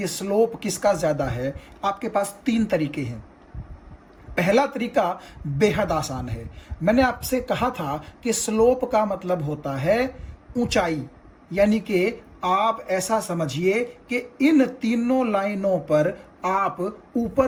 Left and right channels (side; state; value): both; identical; correlation 1.00